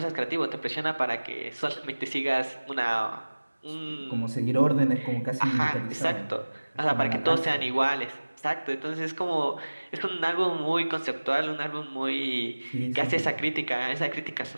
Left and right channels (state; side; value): inverted; both; correlation -1.00